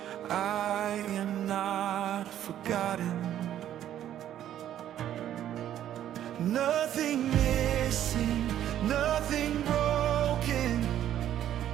I am not forgotten. Nothing missing, nothing broken,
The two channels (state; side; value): quieter; left; 11.3 dB